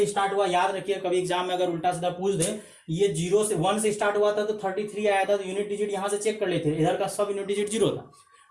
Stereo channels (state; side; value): identical; both; correlation 1.00